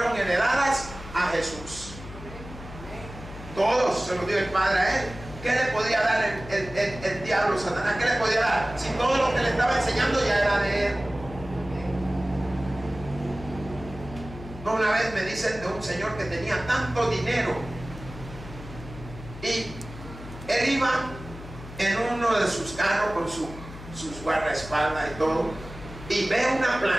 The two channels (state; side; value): noise; left; hum, 14 dB below the sound